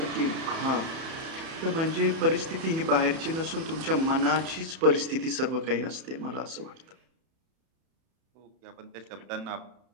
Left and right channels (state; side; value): late; left; 31 ms